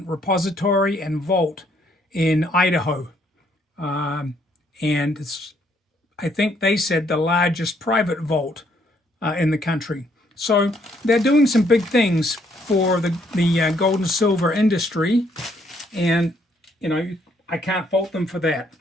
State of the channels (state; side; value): normal; both; correlation 0.69